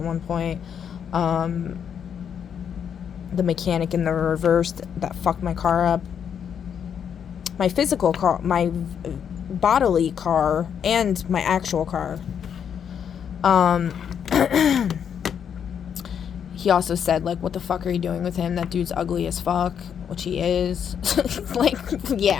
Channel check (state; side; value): quieter; right; 8.0 dB